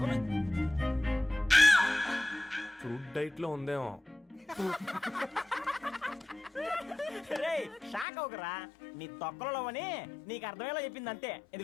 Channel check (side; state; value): right; drops out; at 8.1 s